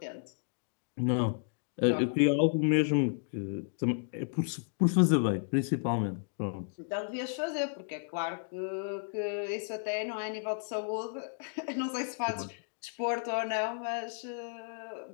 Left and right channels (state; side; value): silent; right; digital silence